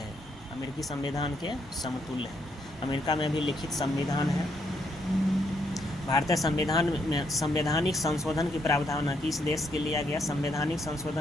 अमेरिकी संविधान के समतुल्य है। अमेरिका में भी लिखित संविधान है। भारतीय संविधान में संवैधानिक संशोधन की प्रावधान किस देश के लिया गया, संवैधानिक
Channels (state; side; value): normal; both; correlation 0.75